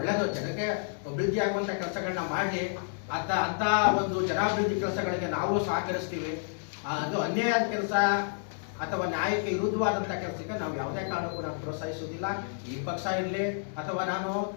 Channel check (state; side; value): silent; right; digital silence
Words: ಜನಕ್ಕೆ ಅಭಿವೃದ್ಧಿ ಆಗುವಂತ ಕೆಲಸಗಳನ್ನ ಮಾಡಿ ಅಂತ ಒಂದು ಜನಾಭಿವೃದ್ಧಿ ಕೆಲಸಗಳಿಗೆ ನಾವು ಸಹಕರಿಸ್ತೀವಿ. ಅದು ಅನ್ಯಾಯದ ಕೆಲಸ ಅಥವಾ ನ್ಯಾಯಕ್ಕೆ ವಿರುದ್ಧವಾದಂಥ ಕೆಲಸಕ್ಕೆ ನಾವು ಯಾವುದೇ ಕಾರಣಕ್ಕೂ ನಾವು ಪ್ರೋತ್ಸಾಹಿಸುವುದಿಲ್ಲ. ಈ ಪಕ್ಷ ಇರಲಿ ಅಥವಾ ನಾನು